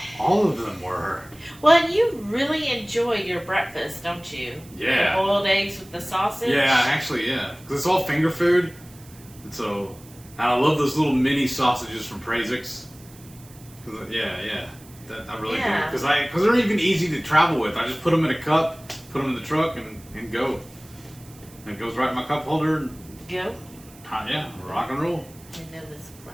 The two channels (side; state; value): right; noise; hiss, 23 dB below the sound